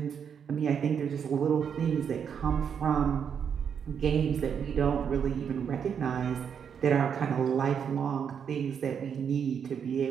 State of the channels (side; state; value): left; quieter; 7.5 dB